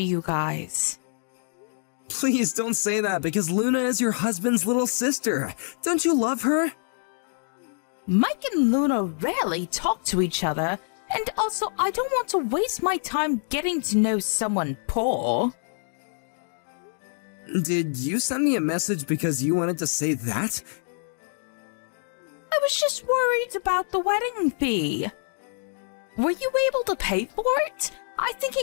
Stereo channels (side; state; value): right; silent; digital silence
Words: you guys. Please don't say that, because Luna is your husband's little sister. Don't you love her? Mike and Luna rarely talk to each other, and also I don't want to waste my time getting to know someone poor. Did you send me a message because you wanted to say that? I was just worried about the wedding fee. Were you able to pay for it? I think